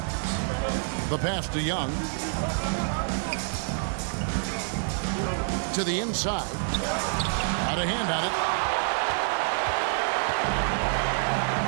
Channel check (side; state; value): left; silent; digital silence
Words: The pass to Young. To the inside. Out of hand on it.